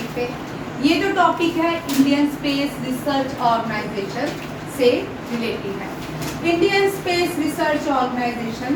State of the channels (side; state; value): both; identical; correlation 1.00